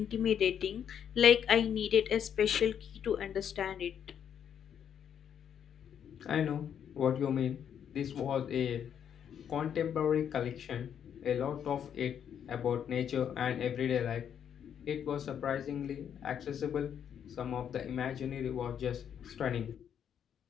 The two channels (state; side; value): quieter; right; 8.6 dB